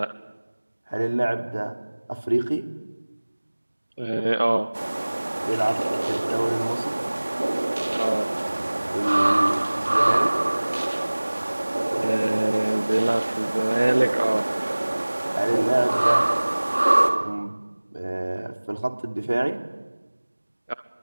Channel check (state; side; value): inverted; both; correlation -1.00